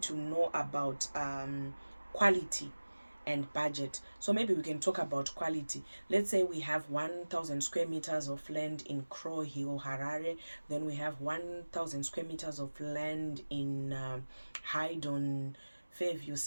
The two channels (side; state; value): both; inverted; correlation -1.00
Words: to know about quality and budget. So maybe we can talk about quality. Let's say we have 1,000 square meters of land in Crow Hill, Harare. Then we have 1,000 square meters of land in Haydon, Fairview,